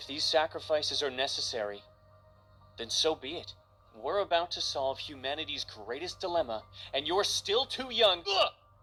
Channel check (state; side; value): identical; both; correlation 1.00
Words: these sacrifices are necessary, then so be it. We're about to solve humanity's greatest dilemma, and you're still too young. Ugh!